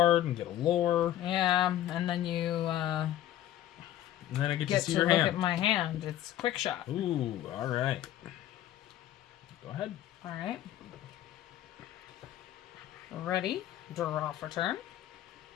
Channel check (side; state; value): right; quieter; 12.6 dB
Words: and get a lore. Yeah, and then you and then I get to see to your look hand. at my hand. It's quick shot. Ooh, all right. Go ahead. All right. Ready. Draw for turn.